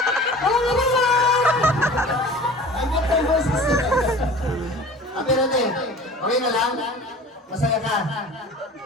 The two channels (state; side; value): normal; both; correlation 0.42